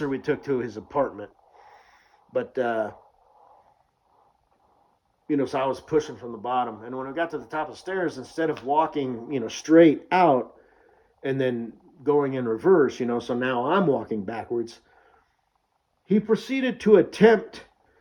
we took to his apartment, but so I was pushing from the bottom, and when we got to the top of the stairs, instead of walking straight out and then going in reverse, so now I'm walking backwards, he proceeded to attempt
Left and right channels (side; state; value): both; identical; correlation 1.00